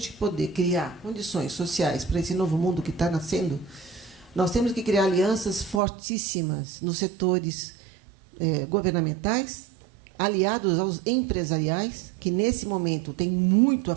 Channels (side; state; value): left; drops out; at 5.8 s